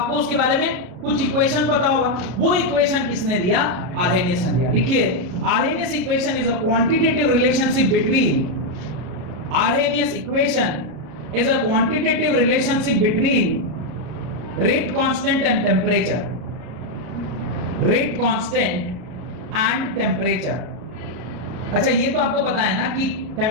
उसके बारे में कुछ इक्वेशन पता होगा। वो इक्वेशन किसने दिया? आर्हेनियस ने दिया। लिखिए, Arrhenius equation is a quantitative relationship between Arrhenius equation is a quantitative relationship between rate constant and temperature. Rate constant and temperature. अच्छा, ये तो आपको पता है ना कि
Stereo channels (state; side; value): late; left; 34 ms